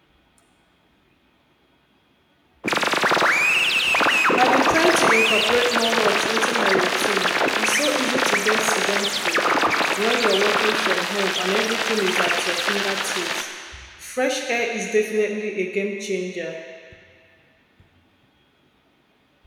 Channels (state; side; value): identical; both; correlation 1.00